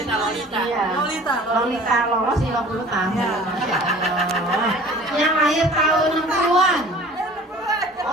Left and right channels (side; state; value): both; normal; correlation 0.46